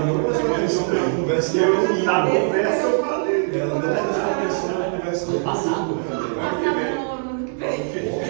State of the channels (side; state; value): left; silent; 62 dB below the other